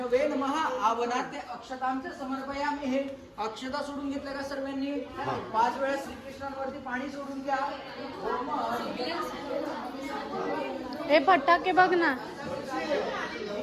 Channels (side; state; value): both; identical; correlation 1.00